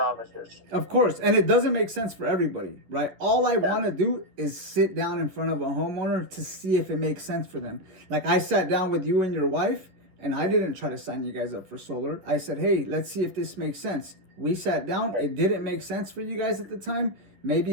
Of course, and it doesn't make sense for everybody, right? All I want to do is sit down in front of a homeowner to see if it makes sense for them. Like, I sat down with you and your wife, and I didn't try to sign you guys up for solar. I said, hey, let's see if this makes sense. We sat down. It didn't make sense for you guys at the time.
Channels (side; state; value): left; late; 11 ms